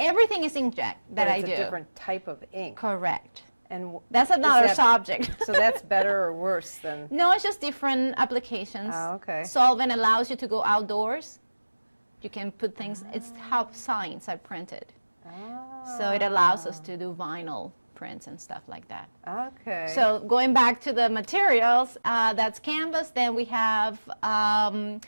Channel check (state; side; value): inverted; both; correlation -1.00